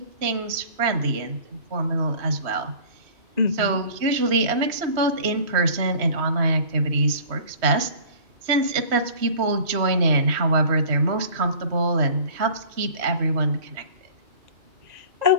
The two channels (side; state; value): left; late; 3.1 ms